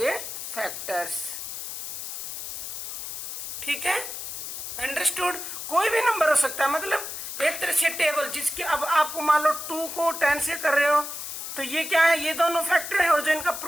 फैक्टर्स। ठीक है, अंडरस्टूड। कोई भी नंबर हो सकता है, मतलब एक तरह से टेबल जिसके अब आपको मान लो 2 को 10 से कर रहे हो तो ये क्या है? ये दोनों फैक्टर है, और जो इनका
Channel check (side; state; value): left; noise; hiss, 7 dB below the sound